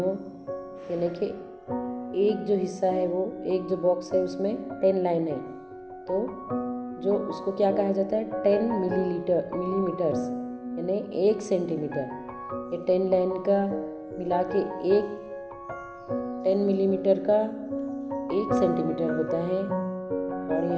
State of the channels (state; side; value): identical; both; correlation 1.00